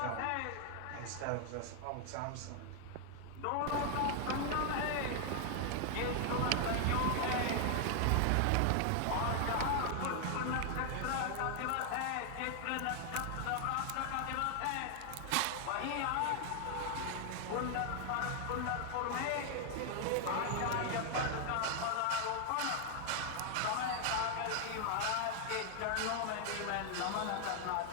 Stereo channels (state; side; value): different; both; correlation 0.00